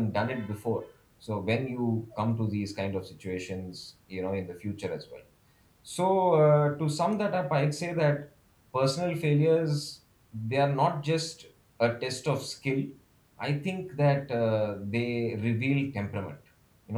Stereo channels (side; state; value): both; identical; correlation 1.00